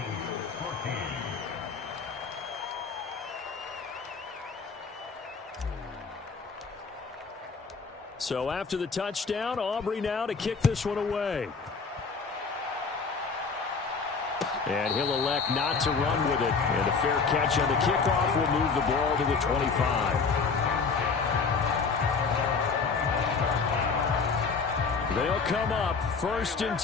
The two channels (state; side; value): quieter; right; 4.9 dB